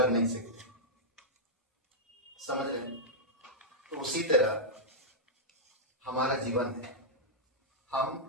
नहीं सकते। समझ रहे हैं? तो उसी तरह हमारा जीवन है।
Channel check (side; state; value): both; normal; correlation -0.09